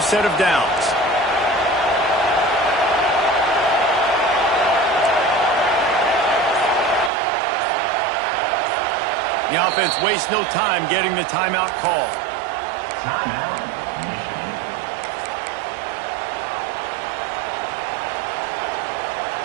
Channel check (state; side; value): drops out; left; at 7.1 s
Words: of downs. The offense wastes no time getting the timeout called. And